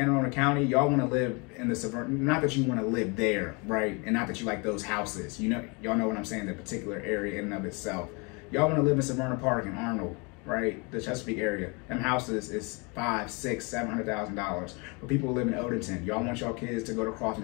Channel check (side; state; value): right; quieter; 30.5 dB